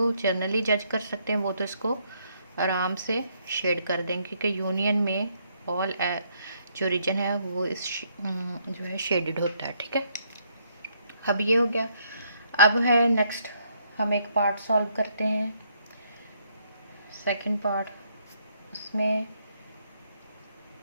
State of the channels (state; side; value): inverted; both; correlation -0.71